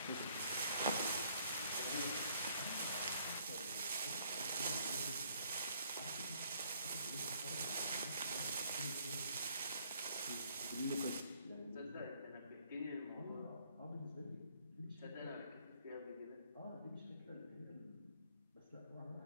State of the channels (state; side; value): inverted; both; correlation -0.64